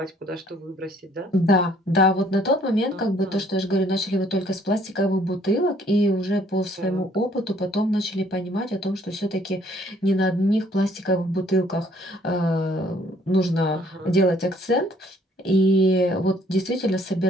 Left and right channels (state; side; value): normal; both; correlation 0.62